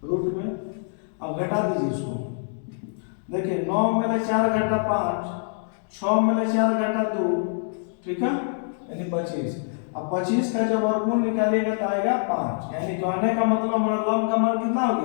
रूट में। अब घटा दीजिए इसको, देखिए 9 में ले 4 घटा 5, 6 में ले 4 घटा 2, ठीक है, यानी 25। अब 25 का जब वर्गमूल निकालिएगा तो आएगा 5, यानी कहने का मतलब हमारा लंब का मान कितना हो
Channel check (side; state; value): right; silent; digital silence